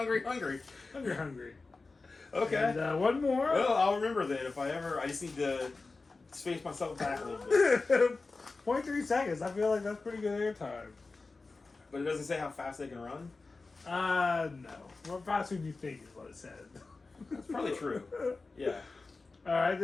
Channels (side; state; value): right; quieter; 3.8 dB